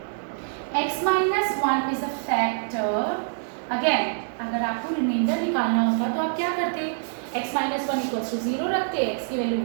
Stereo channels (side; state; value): left; silent; digital silence